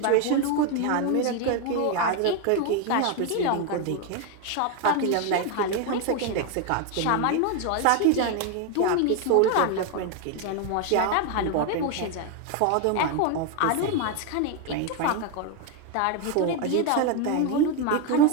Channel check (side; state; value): both; different; correlation 0.01